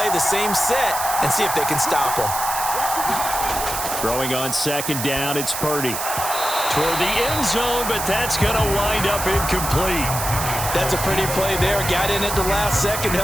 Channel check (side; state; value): right; noise; hiss, 4 dB below the sound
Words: the same set, and see if they can stop them. Throwing on 2nd down, it's Purdy. Toward the end zone, but that's going to wind up incomplete. That's a pretty play there. Got in at the last second,